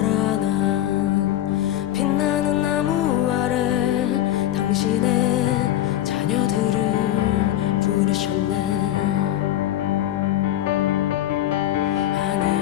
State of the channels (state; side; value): quieter; right; 13.0 dB